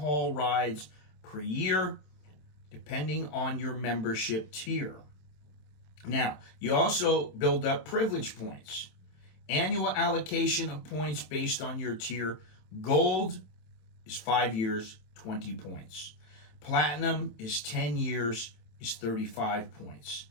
rides per year, depending on your membership tier. Now, you also build up privilege points. Annual allocation of points based on your tier. Gold is 5 years, 20 points. Platinum is 10 years, is 35 points.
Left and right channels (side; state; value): right; late; 27 ms